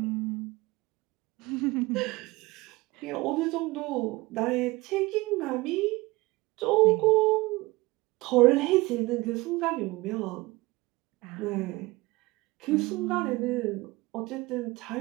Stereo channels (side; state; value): left; quieter; 21.5 dB